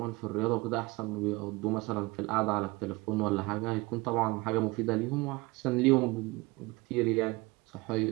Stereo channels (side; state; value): left; quieter; 23.5 dB